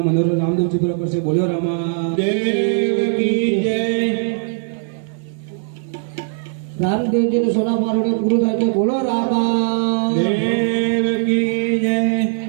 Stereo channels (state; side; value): silent; left; digital silence